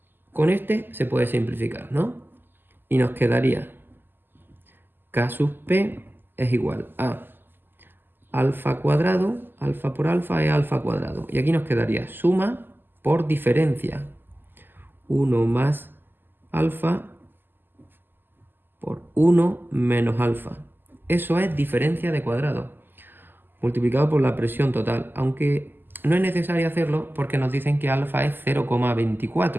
Con este se puede simplificar, ¿no? Y nos quedaría K sub P es igual a alfa cuadrado, alfa por alfa es alfa cuadrado. Y aquí nos quedaría suma por diferencia. 1 más alfa por 1 menos alfa. Eso es diferencia de cuadrado, multiplicado por la presión total. Aunque no es necesario hacerlo porque nos dicen que alfa es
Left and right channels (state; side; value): late; left; 0.094 ms